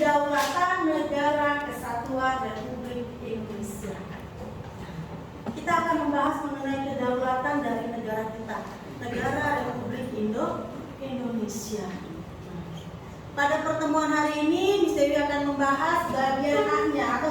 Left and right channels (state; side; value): identical; both; correlation 1.00